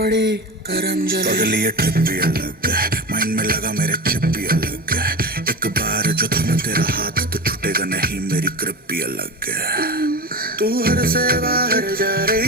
गरम जले पगली ये ट्रिप भी अलग है माइंड में लगा मेरे चिप भी अलग है एक बार जो थम तेरा हाथ तो छूटेगा नहीं मेरी ग्रिप भी अलग है तू हर से बाहर जा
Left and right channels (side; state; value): both; normal; correlation 0.28